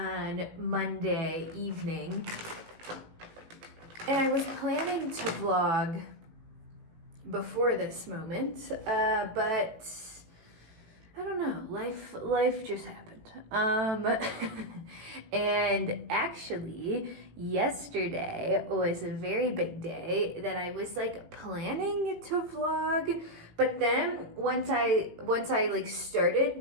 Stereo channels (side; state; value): left; late; 18 ms